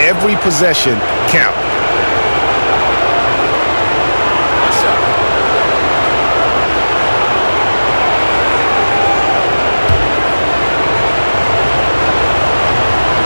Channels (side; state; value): both; inverted; correlation -1.00